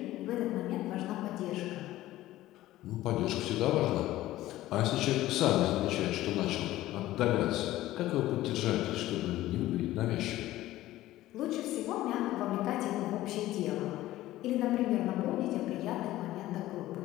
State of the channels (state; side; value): quieter; right; 15.6 dB